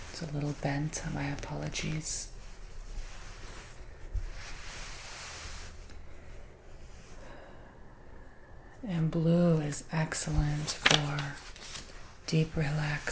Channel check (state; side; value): identical; both; correlation 1.00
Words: It's a little bent, my apologies. And blue is excellent for deep